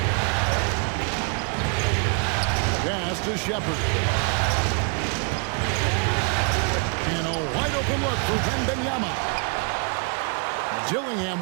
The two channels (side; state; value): left; quieter; 38.4 dB